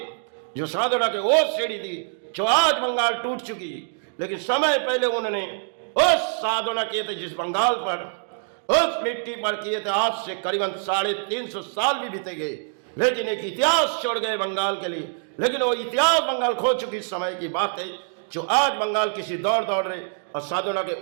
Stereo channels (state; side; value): silent; left; digital silence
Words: जो साधना के वो सीढ़ी थी जो आज बंगाल टूट चुकी, लेकिन समय पहले उन्होंने उस साधना किए थे जिस बंगाल पर, उस मिट्टी पर किए थे। आज से करीबन 350 साल भी बीते गए, लेकिन एक इतिहास छोड़ गए बंगाल के लिए। लेकिन वो इतिहास बंगाल खो चुकी समय की बात है, जो आज बंगाल किसी दौड़ रहे, और साधना के